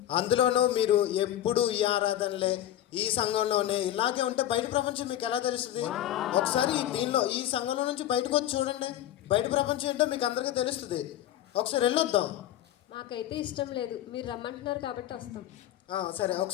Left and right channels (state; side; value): quieter; right; 12.5 dB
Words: అందులోనూ మీరు ఎప్పుడు ఈ ఆరాధనలే ఈ సంఘంలోనే ఇలాగే ఉంటే బయట ప్రపంచం మీకు ఎలా తెలుస్తుంది? ఒకసారి ఈ సంఘంలో నుంచి బయటకు వచ్చి చూడండి, బయట ప్రపంచం ఏంటో మీకు అందరికీ తెలుస్తుంది. ఒకసారి వెళ్ళొద్దాం. మాకైతే ఇష్టం లేదు, మీరు రమ్మంటున్నారు కాబట్టి వస్తాం. సరే,